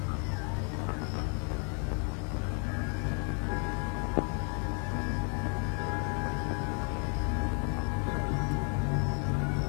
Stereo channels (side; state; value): right; quieter; 39.7 dB